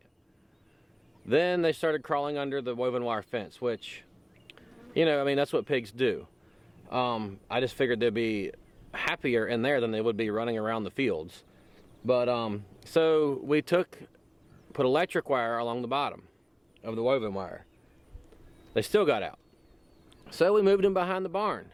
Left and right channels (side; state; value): both; identical; correlation 1.00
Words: Then they started crawling under the woven wire fence, which, you know, I mean, that's what pigs do. I just figured they'd be happier in there than they would be running around the fields. But so we put electric wire along the bottom of the woven wire. They still got out. So we moved them behind the barn,